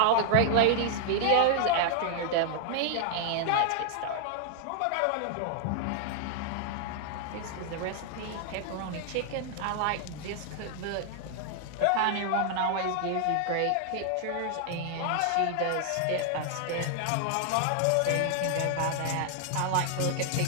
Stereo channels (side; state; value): both; different; correlation 0.00